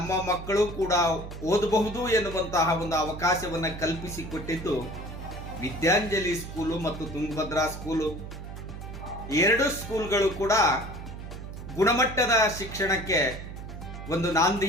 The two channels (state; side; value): noise; right; hum, 10 dB below the sound